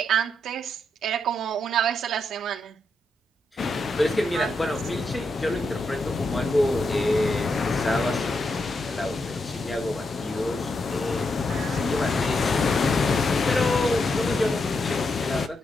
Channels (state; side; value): normal; both; correlation 0.82